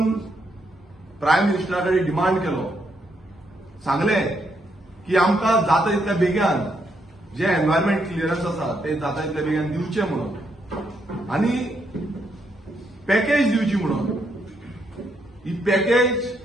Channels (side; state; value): both; normal; correlation 0.77